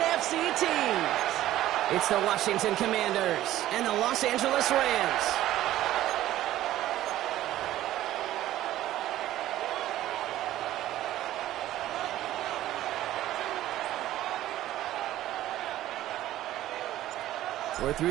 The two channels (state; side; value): quieter; left; 14.1 dB